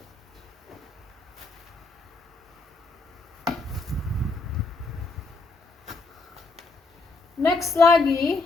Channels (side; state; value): right; quieter; 3.6 dB